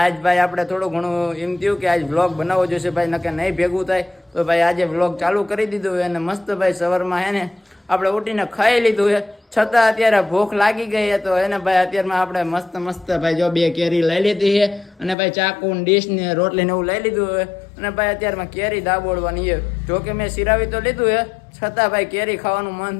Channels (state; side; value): drops out; right; at 15.2 s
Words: આજ ભાઈ આપણે થોડું ઘણું એમ થયું કે આજ વ્લોગ બનાવવો જોઈશે ભાઈ, નકે નહીં ભેગું થાય. તો ભાઈ આજે વ્લોગ ચાલુ કરી દીધું છે અને મસ્ત ભાઈ સવારમાં હે ને આપણે ઉઠીને ખાઈ લીધું છે, છતાં અત્યારે ભૂખ લાગી ગઈ છે. તો એને ભાઈ અત્યારમાં આપણે મસ્ત મસ્ત ભાઈ જો 2 કેરી લઈ લીધી છે અને ભાઈ ચાકુ ને ડીશ ને રોટલી ને એવું લઈ લીધું છે અને ભાઈ અત્યારમાં કેરી દાબોડવાની છે. જો કે મેં સિરાવી તો લીધું છે, છતાં ભાઈ કેરી ખાવાનું મન